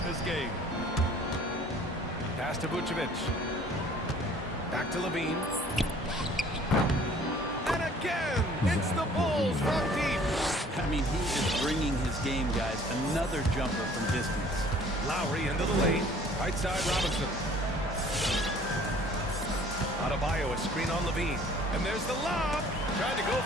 this game. Pass to Vucevic. Back to LaVine. And again, it's the Bulls from deep. I mean, he is bringing his game, guys. Another jumper from distance. Lowry into the lane. Right side, Robinson. Adebayo, a screen on LaVine. And there's the lob. Trying to go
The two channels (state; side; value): normal; both; correlation 0.53